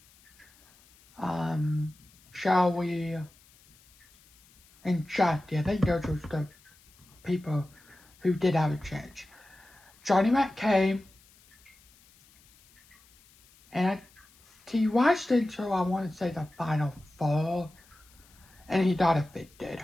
Shall We and Jackie. I think those were the people who did have a chance. Johnny Mac came, and he watched until I want to say the final 4, and he got evicted.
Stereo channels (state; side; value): noise; left; hiss, 29 dB below the sound